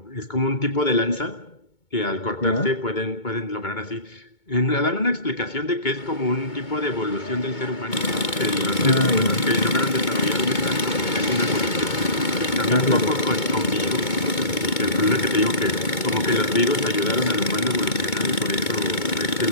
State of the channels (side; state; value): right; late; 2.2 ms